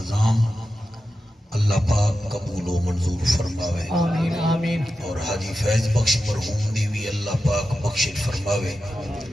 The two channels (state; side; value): normal; both; correlation 0.91